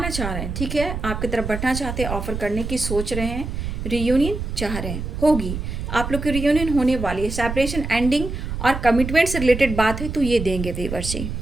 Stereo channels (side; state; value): right; noise; rumble, 5 dB below the sound